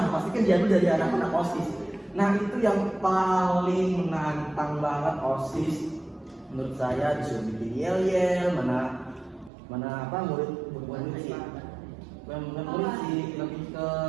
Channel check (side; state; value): left; drops out; at 9.5 s